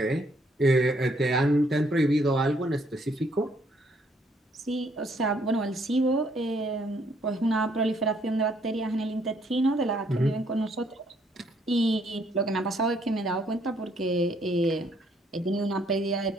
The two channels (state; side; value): normal; both; correlation 0.68